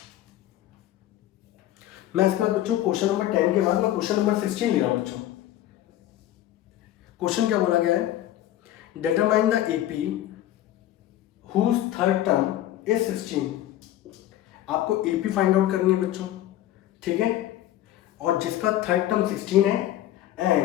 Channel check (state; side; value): quieter; right; 13.3 dB